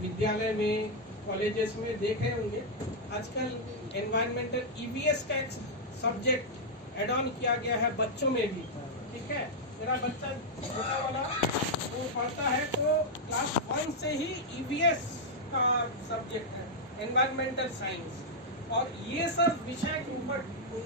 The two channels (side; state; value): both; normal; correlation -0.04